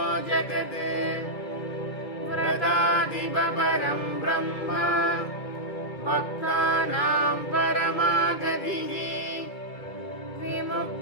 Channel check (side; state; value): right; late; 2.4 ms